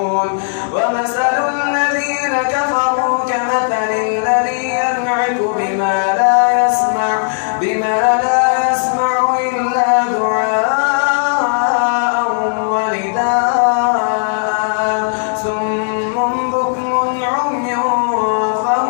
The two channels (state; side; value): silent; right; digital silence